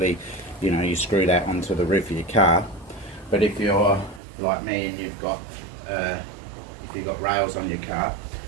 you know, you screw that onto the roof of your car. But if you're like me and you've got rails on your car,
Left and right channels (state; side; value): drops out; left; at 4.2 s